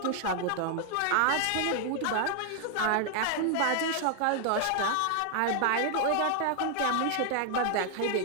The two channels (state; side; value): different; both; correlation 0.00